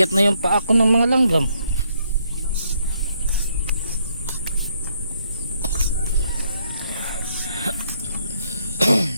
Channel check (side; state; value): both; inverted; correlation -0.72